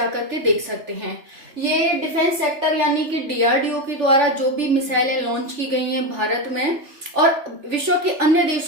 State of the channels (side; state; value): left; late; 3.4 ms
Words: के देख सकते हैं। ये डिफेंस सेक्टर यानी कि डीआरडीओ के द्वारा जो भी मिसाइलें लॉन्च की गई हैं भारत में और विश्व के अन्य